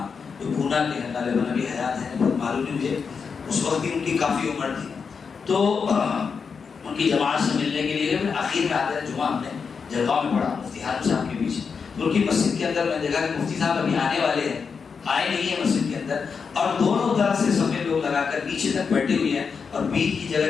جو پونا کے ہیں، غالباً ابھی حیات ہیں، بہت معلوم نہیں مجھے، اس وقت بھی ان کی کافی عمر تھی، تو ان کی جماعت سے ملنے کے لیے آخر میں آتے ہیں جمعہ ہم نے جلگاؤں میں پڑھا مفتی ہارون صاحب کے پیچھے، تو ان کی مسجد کے اندر میں دیکھا کہ مفتی صاحب ابھی آنے والے ہیں، آئے نہیں ہیں مسجد کے اندر، اور دونوں طرف سے سفید لوگ لگا کر پیچھے تک بیٹھے ہوئے ہیں، اور بیچ کی جگہ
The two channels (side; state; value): right; quieter; 5.7 dB